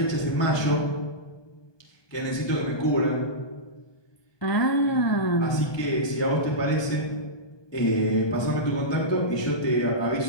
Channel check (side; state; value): right; late; 1.2 ms